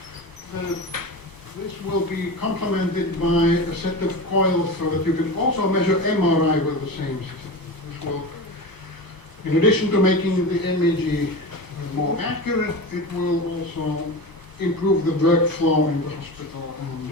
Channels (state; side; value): late; right; 1.0 ms